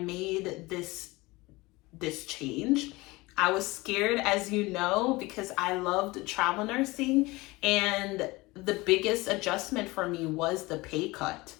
this change. I was scared, as you know, because I loved travel nursing, and the biggest adjustment for me was the pay cut.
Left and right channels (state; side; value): quieter; right; 22.0 dB